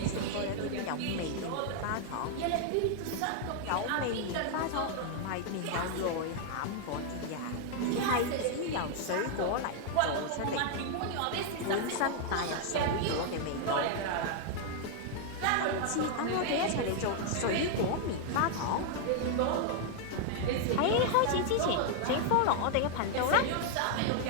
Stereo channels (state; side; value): different; both; correlation 0.00